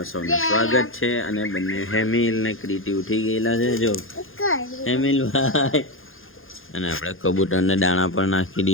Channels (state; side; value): late; right; 0.60 ms